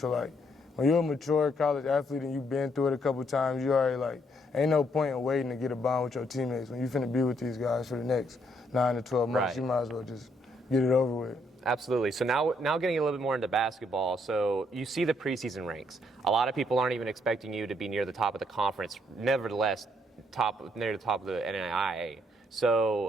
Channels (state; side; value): normal; both; correlation 0.72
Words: like when you're a mature college athlete and you've been through it a couple times, you already like, ain't no point in waiting to get a bond with your teammates. When you finna be with these guys for the next 9 to 12 months, Right. You might as well just get it over with. Absolutely. So now getting a little bit more into basketball. So you see the preseason ranks. A lot of people aren't even expecting you to be near the top of the conference. Nevertheless, near the top of the NAIA.